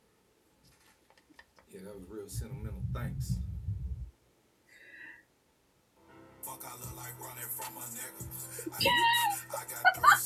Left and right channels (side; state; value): both; identical; correlation 1.00